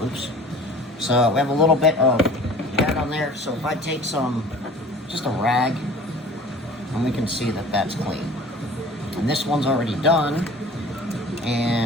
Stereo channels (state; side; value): normal; both; correlation 0.45